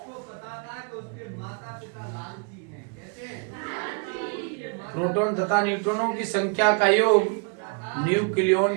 प्रोटॉन तथा न्यूट्रॉनों की संख्या का योग न्यूक्लियन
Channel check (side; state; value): left; quieter; 37.8 dB